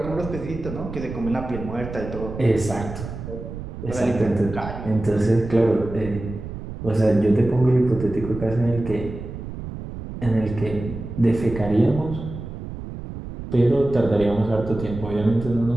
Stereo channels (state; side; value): noise; right; rumble, 9 dB below the sound